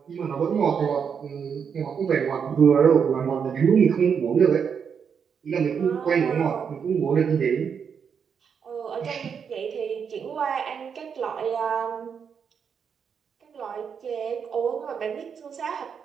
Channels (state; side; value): quieter; left; 6.9 dB